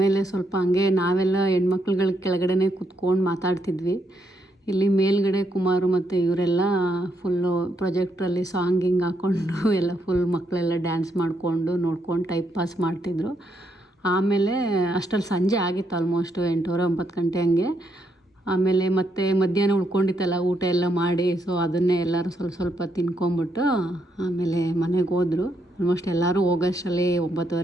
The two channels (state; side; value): normal; both; correlation 0.77